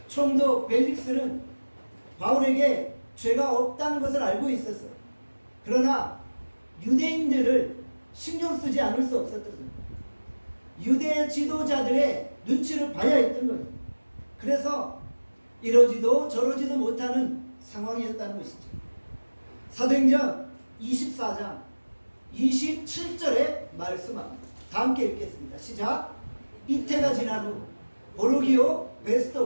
총독 벨릭스는 바울에게 죄가 없다는 것을 알고 있었어요. 그러나 유대인들을 신경 쓰지 않을 수 없었던 거예요. 유대 지도자들의 눈치를 봐야 했던 거예요. 그래서 이러지도 저러지도 못하는 상황이었다는 것이죠. 사도행전 24장 27절에 말씀합니다. 다 함께 읽겠습니다. 시작. 이태가 지난 후 보르기오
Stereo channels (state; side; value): inverted; both; correlation -1.00